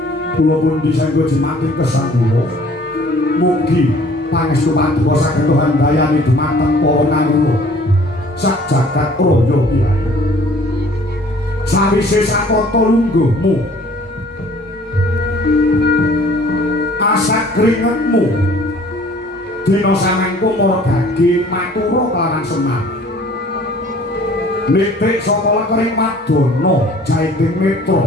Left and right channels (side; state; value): both; normal; correlation 0.53